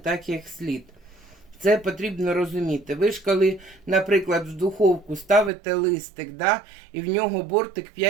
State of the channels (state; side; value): drops out; left; at 5.5 s